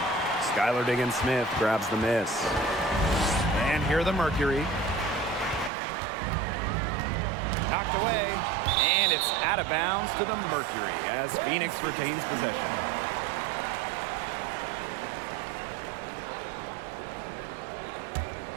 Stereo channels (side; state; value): left; drops out; at 5.7 s